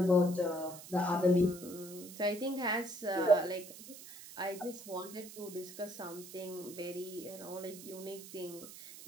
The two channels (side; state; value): right; noise; hiss, 15 dB below the sound